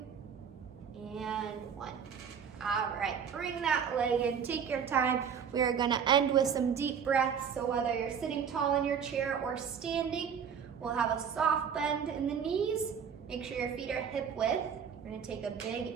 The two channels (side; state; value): left; quieter; 7.3 dB